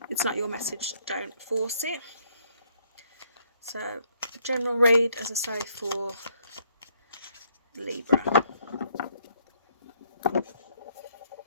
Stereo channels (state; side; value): inverted; both; correlation -0.68